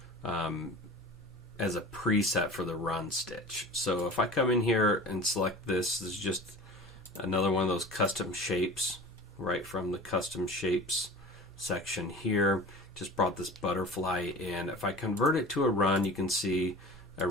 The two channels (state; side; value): normal; both; correlation 0.38